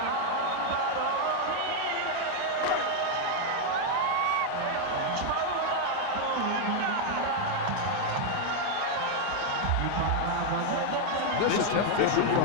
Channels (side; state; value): both; different; correlation 0.00